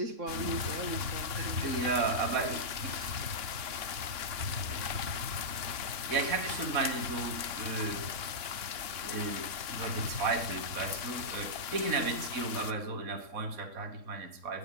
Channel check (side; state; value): left; late; 3.6 ms